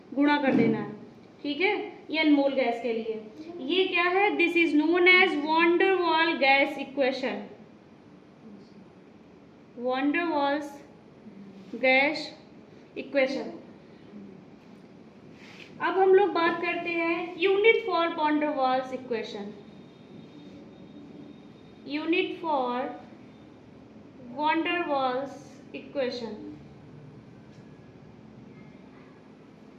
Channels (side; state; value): both; identical; correlation 1.00